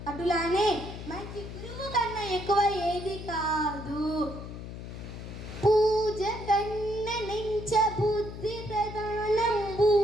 అటులానే మంచి గురువు కన్నా ఎక్కువ ఏది కాదు. పూజ కన్న నెంచ బుద్ధి ప్రధానంబు,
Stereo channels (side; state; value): left; noise; hum, 10 dB below the sound